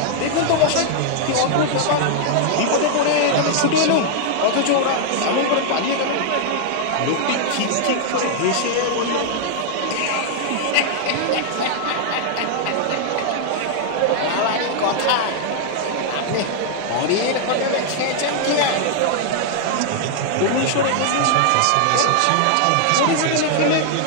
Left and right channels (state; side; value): different; both; correlation 0.00